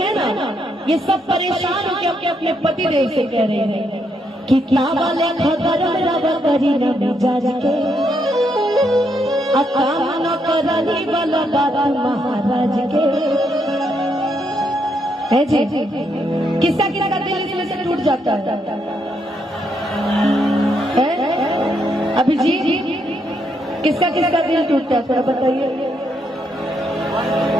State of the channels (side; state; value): both; normal; correlation 0.77